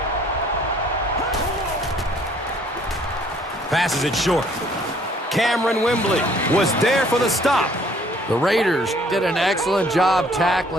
Passes it short. Cameron Wembley was there for the stop. The Raiders did an excellent job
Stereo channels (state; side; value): normal; both; correlation 0.60